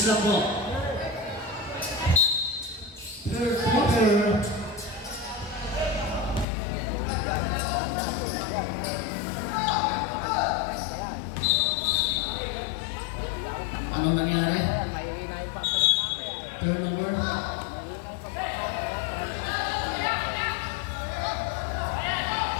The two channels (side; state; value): right; drops out; at 6.5 s